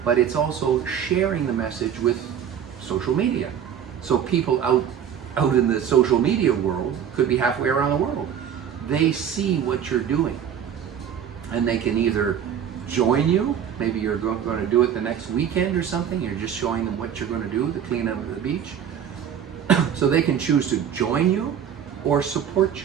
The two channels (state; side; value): quieter; left; 8.7 dB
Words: but it's also sharing the message with social media. So people out in the social media world, could be halfway around the world, they see what you're doing, and they can either join you. Maybe you're going to do it the next weekend or something. You're just showing them what you're going to do to clean up the beach. So they can choose to join you or support